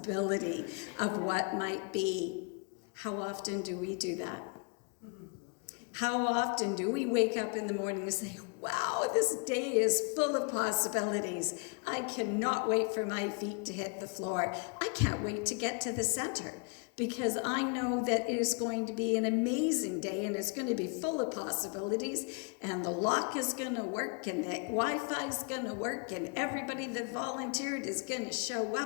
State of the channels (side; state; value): right; quieter; 35.5 dB